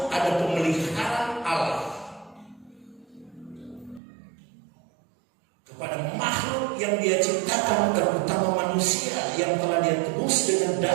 ada pemeliharaan Allah kepada makhluk yang dia ciptakan, terutama manusia yang telah dia tebus dengan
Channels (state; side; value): drops out; left; at 4.0 s